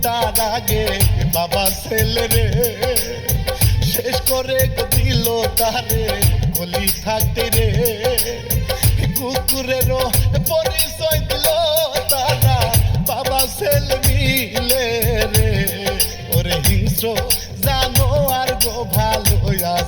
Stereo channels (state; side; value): identical; both; correlation 1.00